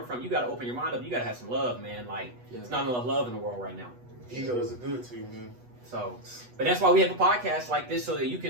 from, you got to open your mind up. You got to have some love, man. Like, it's not enough love in the world right now. Ego is good to you, man. So, but that's why we have a podcast like this, so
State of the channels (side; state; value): left; late; 8.2 ms